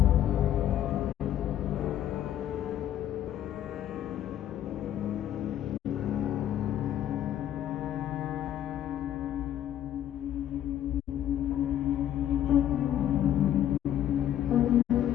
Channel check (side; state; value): right; quieter; 11.2 dB